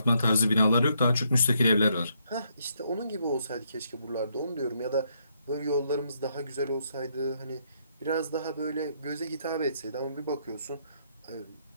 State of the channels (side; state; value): both; inverted; correlation -0.74